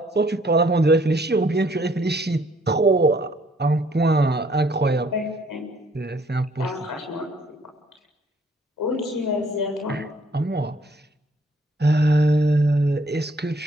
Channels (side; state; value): both; normal; correlation 0.64